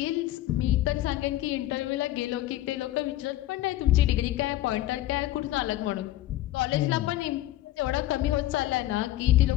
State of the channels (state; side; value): quieter; right; 15.0 dB